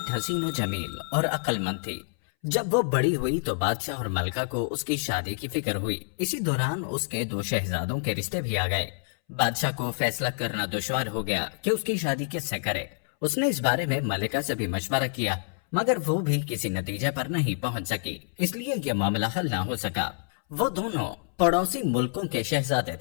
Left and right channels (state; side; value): silent; right; 60 dB below the other